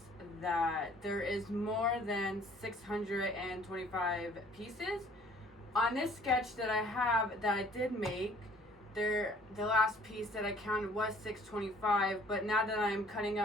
that there is more than 625 pieces. On this sketch that I have that I did make, the last piece that I counted was 625, but now that I'm cutting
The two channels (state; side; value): normal; both; correlation 0.56